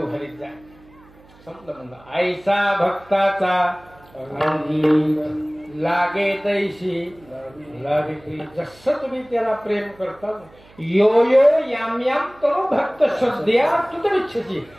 घरीत जाय. संपलं म्हणलं. आईचा भक्ताचा लागे तैशी लागे. जसं तुम्ही त्याला प्रेम करता यो यो याम याम तरो भक्त श्रद्धया तुतमिच्छसी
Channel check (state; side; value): noise; right; hum, 26 dB below the sound